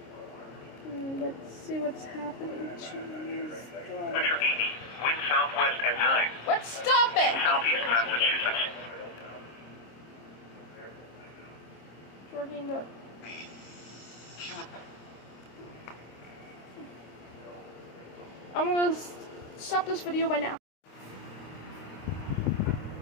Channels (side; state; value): right; late; 26 ms